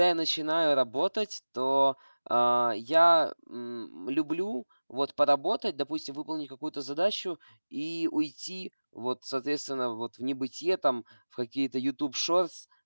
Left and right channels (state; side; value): inverted; both; correlation -1.00